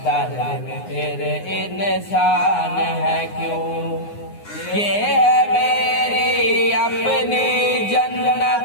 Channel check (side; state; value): right; late; 9.6 ms